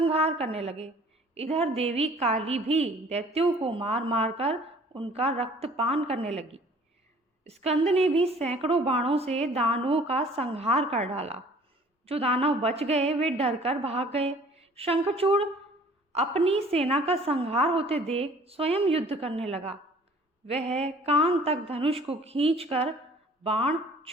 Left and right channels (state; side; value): normal; both; correlation 0.52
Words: करने लगे। इधर देवी काली भी दैत्यों को मार मार कर उनका रक्तपान करने लगी। स्कंद ने भी सैकड़ों बाणों से दानवों का संहार कर डाला। जो दानव बच गए वे डरकर भाग गए। शंखचूड़ अपनी सेना का संहार होते देख स्वयं युद्ध करने लगा। वह कान तक धनुष को खींचकर बाण